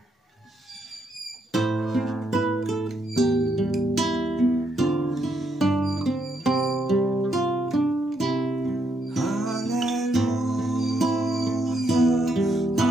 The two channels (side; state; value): both; normal; correlation 0.77